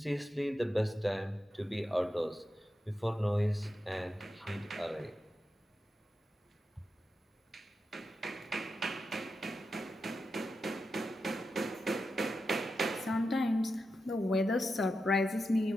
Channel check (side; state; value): both; normal; correlation 0.88